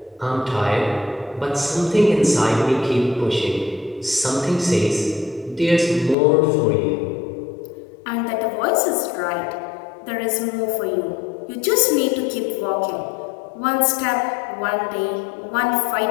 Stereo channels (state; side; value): drops out; right; at 6.2 s